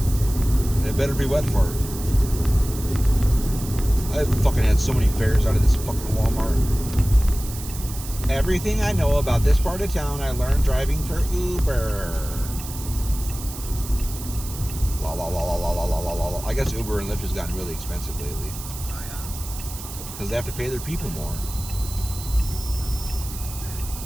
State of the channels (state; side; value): noise; right; hiss, 12 dB below the sound